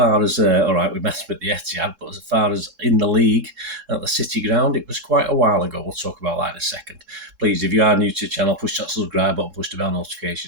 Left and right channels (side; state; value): left; late; 3.7 ms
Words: as, all right, we met at the Etihad, but as far as in the league at the City Ground, it was quite a while ago. We'll talk about that in a second. Please, if you are new to the channel, push that subscribe button, push the bell